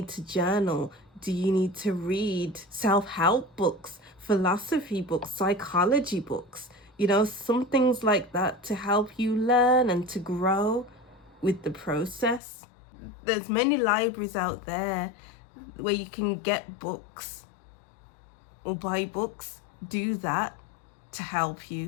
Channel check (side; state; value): right; drops out; at 12.4 s